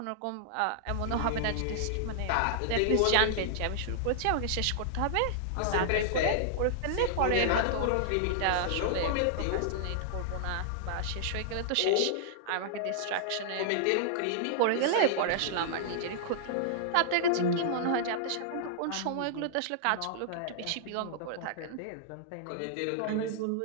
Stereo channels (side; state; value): both; different; correlation -0.01